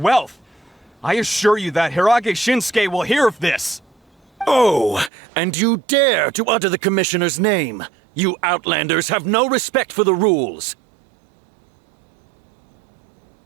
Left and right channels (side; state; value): left; drops out; at 5.1 s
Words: wealth. I assure you that Hirage Shinsuke will hear of this. Oh, and you dare to utter the Commissioner's name. You Outlanders have no respect for the rules.